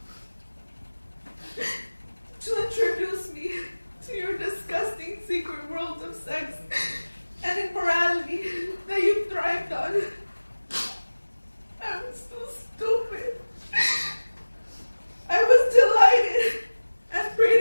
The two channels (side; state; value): both; inverted; correlation -1.00